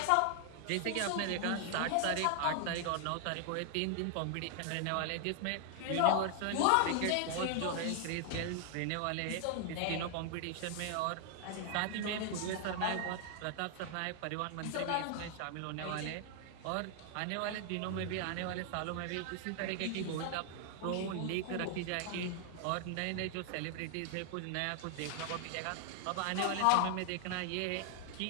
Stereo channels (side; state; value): both; different; correlation 0.00